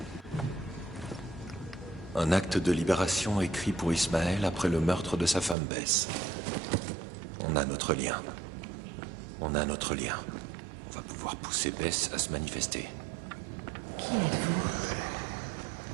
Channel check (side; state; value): left; drops out; at 5.6 s